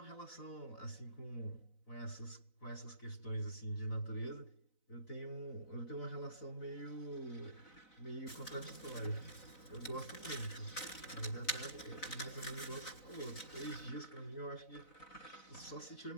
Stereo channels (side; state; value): right; late; 4.0 ms